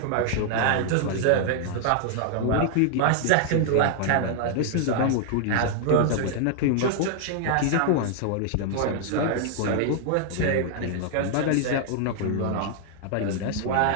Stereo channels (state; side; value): different; both; correlation -0.01